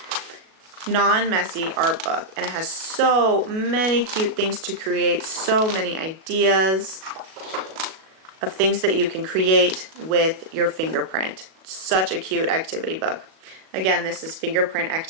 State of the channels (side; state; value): left; late; 37 ms